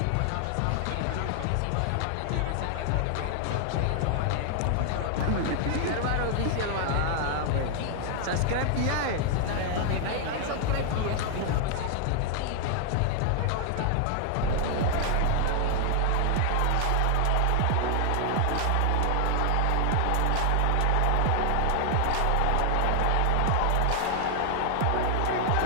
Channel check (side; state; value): both; different; correlation 0.00